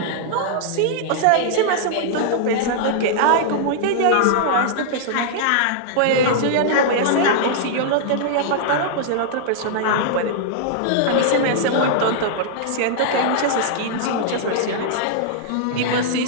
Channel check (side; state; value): both; different; correlation -0.01